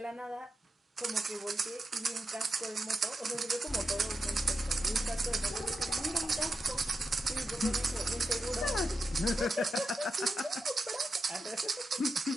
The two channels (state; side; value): normal; both; correlation 0.88